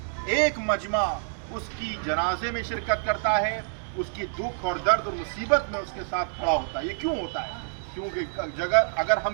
एक मजमा उसकी जनाजे में शिरकत करता है, उसकी दुख और दर्द और मुसीबत में उसके साथ खड़ा होता है। ये क्यों होता है? क्योंकि जगह अगर हम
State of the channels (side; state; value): left; silent; digital silence